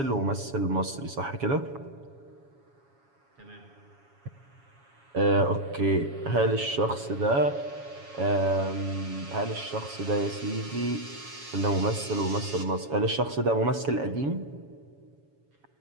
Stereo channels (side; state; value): left; late; 7.2 ms